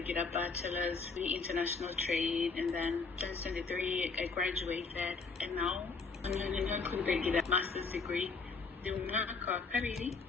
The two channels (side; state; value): right; quieter; 4.6 dB